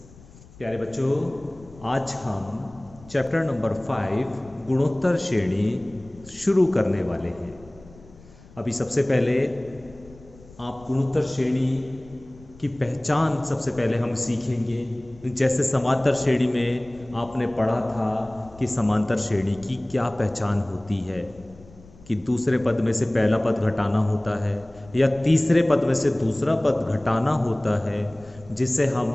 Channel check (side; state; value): left; noise; rumble, 23 dB below the sound